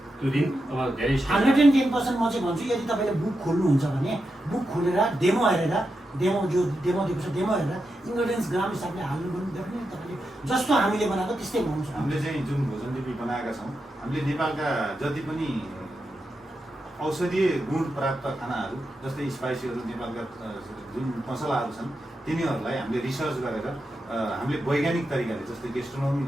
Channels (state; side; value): normal; both; correlation 0.87